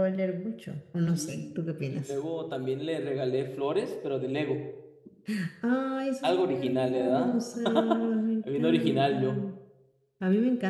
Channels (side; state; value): both; identical; correlation 1.00